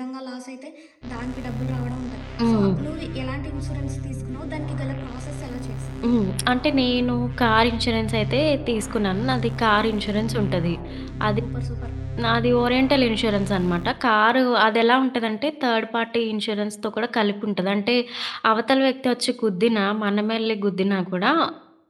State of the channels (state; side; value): identical; both; correlation 1.00